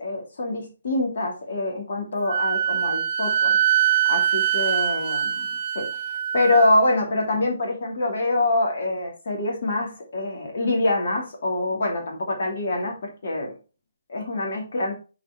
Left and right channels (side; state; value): both; inverted; correlation -0.69